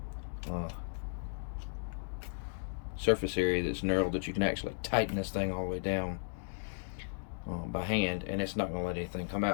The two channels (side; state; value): right; silent; digital silence